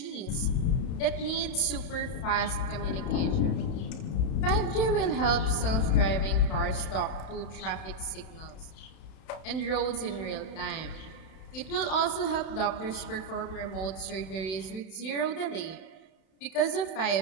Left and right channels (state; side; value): late; right; 31 ms